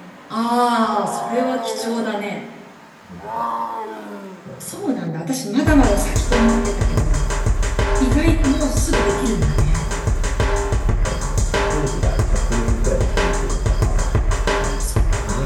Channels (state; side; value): identical; both; correlation 1.00